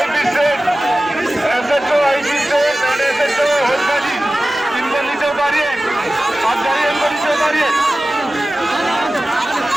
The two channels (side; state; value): both; normal; correlation 0.96